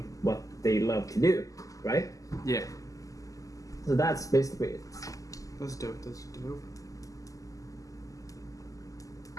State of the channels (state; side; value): late; right; 0.17 ms